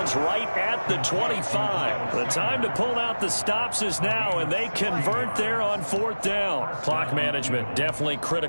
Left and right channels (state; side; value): inverted; both; correlation -1.00